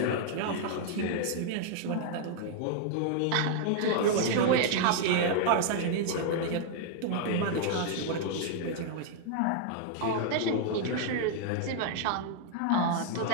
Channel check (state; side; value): different; both; correlation 0.00